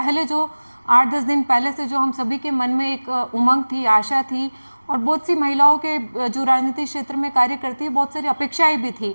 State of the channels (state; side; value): inverted; both; correlation -1.00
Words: जो 8-10 दिन पहले से जो हम सभी के मन में एक उमंग थी, आशा थी, और बहुत सी महिलाओं के जो राजनीतिक क्षेत्र में कार्य करती है, बहुत सारी अपेक्षाएं भी थी